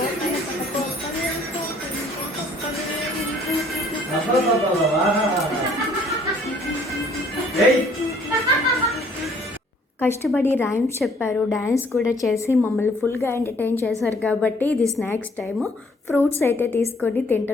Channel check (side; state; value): both; normal; correlation 0.60